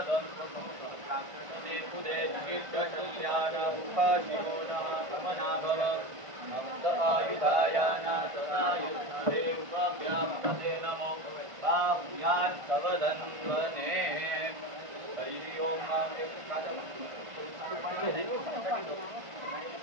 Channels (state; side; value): late; left; 1.5 ms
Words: धन्वने पुदे जिगिर्गशस्यानमुखाशिरोणः समनाभव नमस्त आयुधायाना सदायुधे उपव्यामते नमो बाहुयान् तव धन्वने हरिः ओम